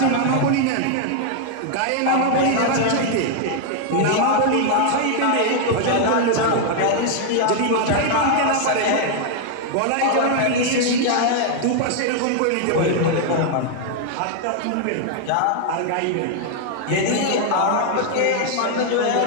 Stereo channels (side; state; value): both; different; correlation 0.00